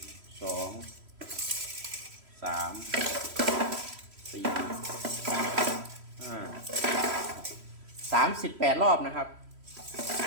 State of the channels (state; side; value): late; left; 3.1 ms